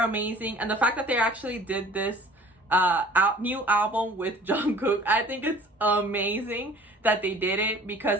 amazing. And the fact that they actually did this new album with Jong Kook, I think it's amazing that they did it, because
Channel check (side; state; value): both; normal; correlation 0.48